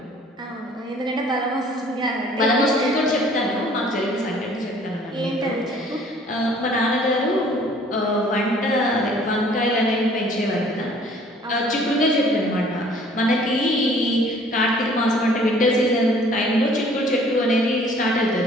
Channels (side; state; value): both; normal; correlation 0.55